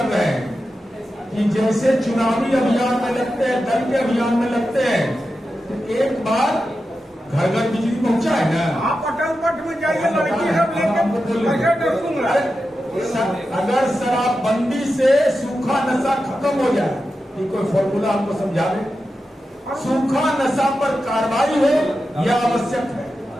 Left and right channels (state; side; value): normal; both; correlation 0.90